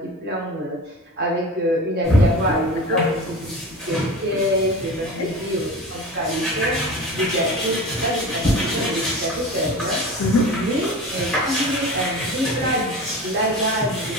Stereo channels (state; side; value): normal; both; correlation 0.33